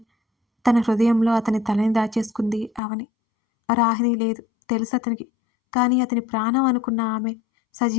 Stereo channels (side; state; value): right; drops out; at 2.8 s